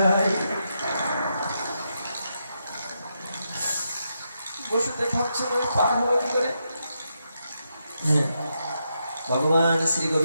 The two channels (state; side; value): inverted; both; correlation -0.83